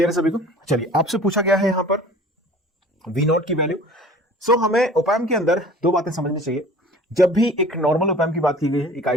है सभी को? चलिए, आपसे पूछा गया है यहां पर V naught की वैल्यू. सो हमें op-amp के अंदर दो बातें समझनी चाहिए. जब भी एक नॉर्मल op-amp की बात की गई है, एक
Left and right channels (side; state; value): both; normal; correlation 0.45